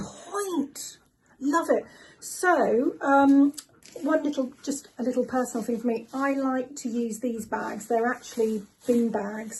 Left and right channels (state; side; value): identical; both; correlation 1.00